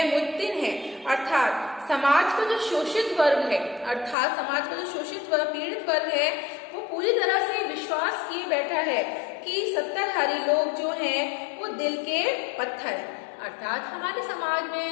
मुत्तिन है, अर्थात समाज का जो शोषित वर्ग है, अर्थात समाज का जो शोषित वर्ग, पीड़ित वर्ग है, वो पूरी तरह से विश्वास किए बैठा है कि सत्ताधारी लोग जो हैं वो दिल के पत्थर हैं। अर्थात हमारे समाज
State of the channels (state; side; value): drops out; right; at 4.2 s